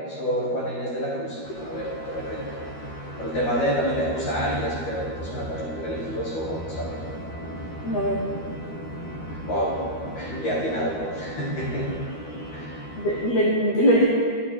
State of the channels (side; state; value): right; late; 13 ms